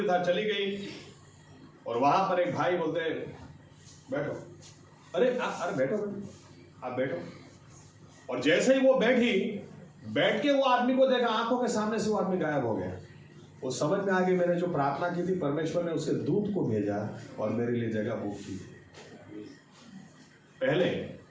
था, चली गई और वहां पर एक भाई बोलते बैठो, अरे बैठो आप बैठो। और जैसे ही वो बैठी, बैठ के वो आदमी को देखा, आंखों के सामने से वो आदमी गायब हो गया। वो समझ में आ गई, मैंने जो प्रार्थना की थी, परमेश्वर ने उसके दूत को भेजा और मेरे लिए जगह बुक की। पहले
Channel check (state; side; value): identical; both; correlation 1.00